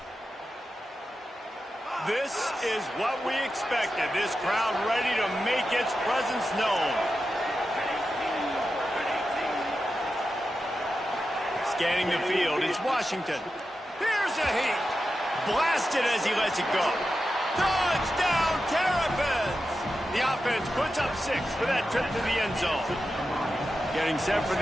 This is what we expected. This crowd ready to make its presence known. Scanning the field, it's Washington. Here's a heat. Blasted as he lets it go. Touchdown, Terrapins! The offense puts up 6 for that trip to the end zone. Getting set for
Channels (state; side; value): normal; both; correlation 0.91